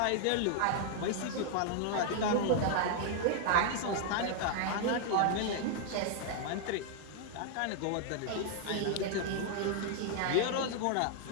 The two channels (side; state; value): both; different; correlation 0.00